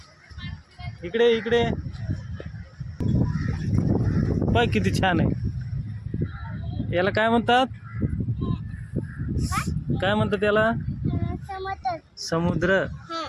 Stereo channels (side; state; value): both; identical; correlation 1.00